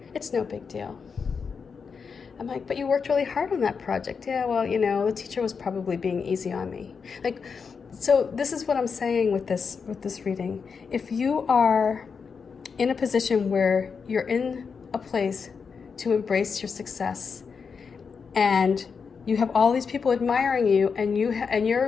It's no big deal. I'm like, but you worked really hard on that project. Yeah, well, the teacher was probably being easy on me. Like, so this is what I'm saying with this reading. If you are in a position where you're in a place to embrace your success, and you have all these people admiring you, and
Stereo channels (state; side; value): quieter; right; 5.7 dB